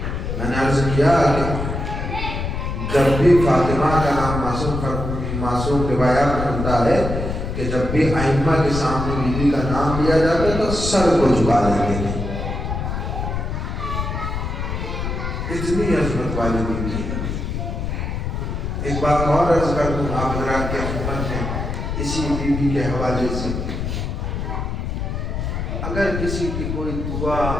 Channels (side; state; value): left; noise; rumble, 3 dB below the sound